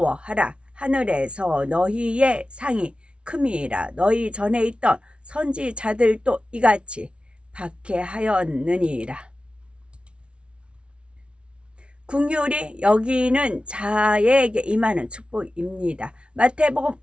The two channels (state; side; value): late; left; 0.059 ms